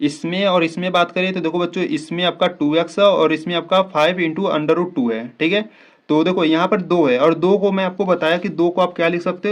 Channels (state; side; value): identical; both; correlation 1.00